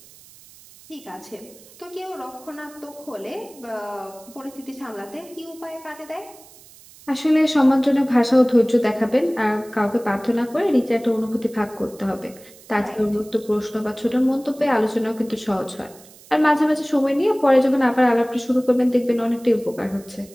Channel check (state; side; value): noise; right; hiss, 23 dB below the sound